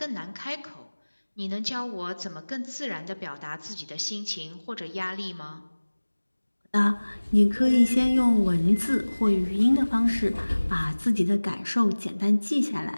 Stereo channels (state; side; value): inverted; both; correlation -1.00